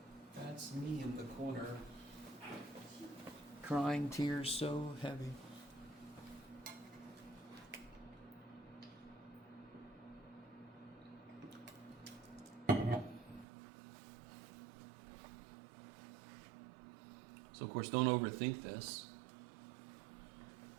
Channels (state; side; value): drops out; left; at 13.5 s